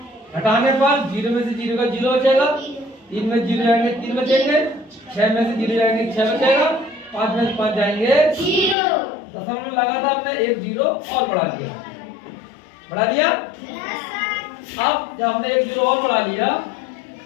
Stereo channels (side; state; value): right; drops out; at 8.8 s